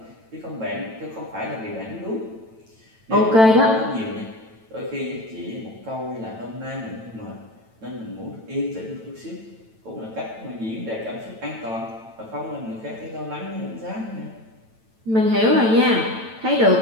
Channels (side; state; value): left; late; 9.0 ms